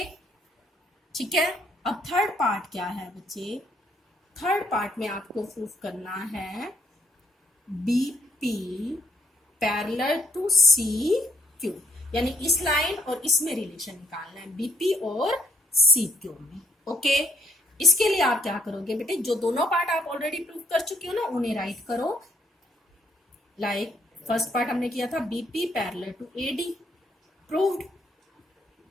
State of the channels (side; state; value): both; normal; correlation 0.69